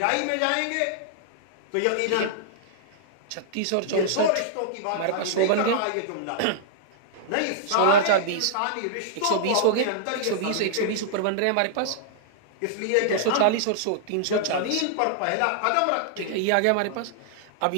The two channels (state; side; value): different; both; correlation -0.01